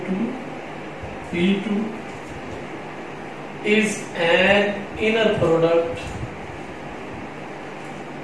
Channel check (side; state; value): both; identical; correlation 1.00